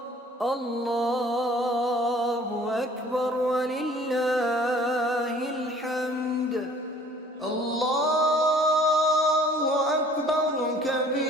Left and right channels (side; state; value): both; normal; correlation 0.52